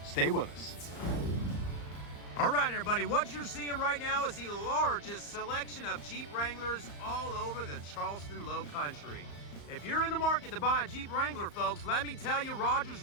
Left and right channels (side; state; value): right; late; 35 ms